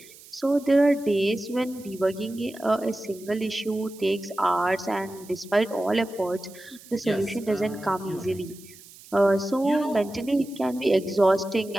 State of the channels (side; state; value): right; noise; hiss, 21 dB below the sound